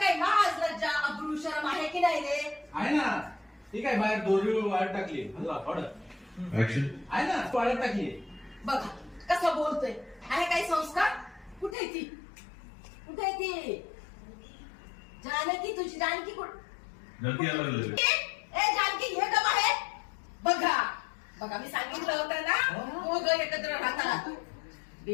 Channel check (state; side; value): drops out; right; at 11.8 s